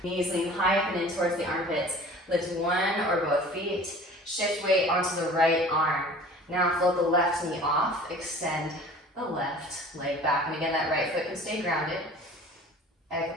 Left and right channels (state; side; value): normal; both; correlation 0.45